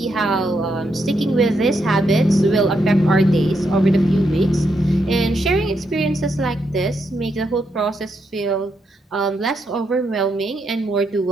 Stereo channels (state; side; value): normal; both; correlation 0.80